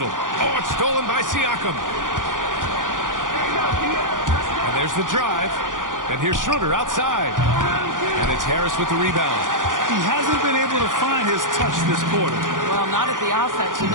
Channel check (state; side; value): late; left; 0.89 ms